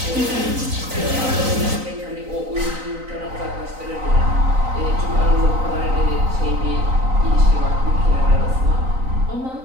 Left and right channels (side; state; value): left; late; 3.9 ms